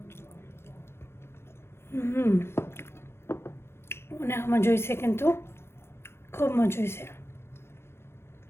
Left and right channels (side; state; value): right; late; 0.12 ms